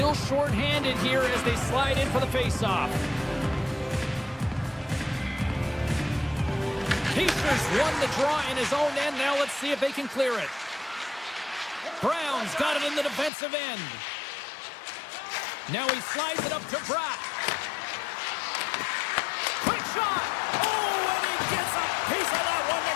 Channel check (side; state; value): right; drops out; at 13.3 s